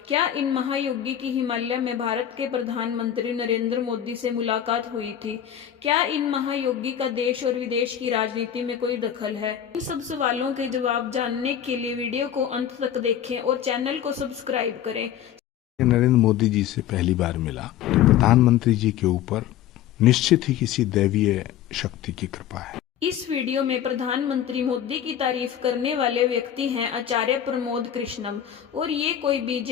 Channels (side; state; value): right; quieter; 10.3 dB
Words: क्या इन महायोगी की हिमालय में भारत के प्रधानमंत्री नरेंद्र मोदी से मुलाकात हुई थी? क्या इन महायोगी का देश और विदेश की राजनीति में कोई दखल है? इन सब सवालों के जवाब जानने के लिए वीडियो को अंत तक देखें और चैनल को सब्सक्राइब करें। नरेंद्र मोदी जी से पहली बार मिला तो प्रधानमंत्री जी के ऊपर निश्चित ही किसी दैवीय शक्ति की कृपा है। इस वीडियो में प्रधानमंत्री मोदी की तारीफ करने वाले व्यक्ति हैं आचार्य प्रमोद कृष्णम, और ये कोई